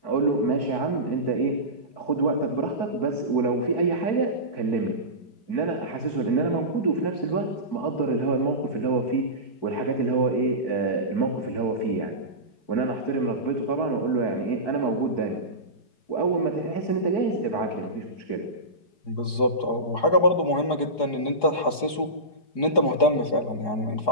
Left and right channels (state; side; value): late; right; 4.8 ms